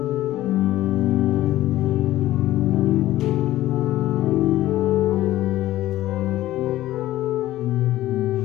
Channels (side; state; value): right; quieter; 15.0 dB